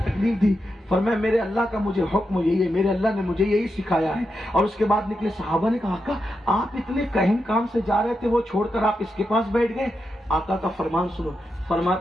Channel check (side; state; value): both; normal; correlation 0.86